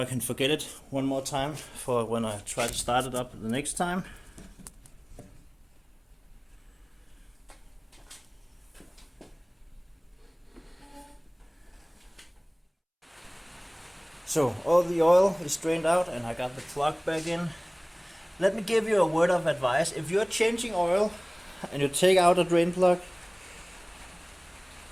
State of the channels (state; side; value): identical; both; correlation 1.00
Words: can forget it one more time for when I try to start it up the next time. So all the oil is drained out and I got the plug back in. Let me give you a word of advice. If you're changing oil and you take out a drain plug,